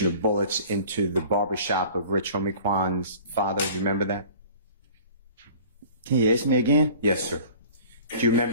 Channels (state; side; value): inverted; both; correlation -0.46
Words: or bullets into the barbershop of Rich Homicwan's father? Do you remember that? Can you ask me again? Yes, sir. Do you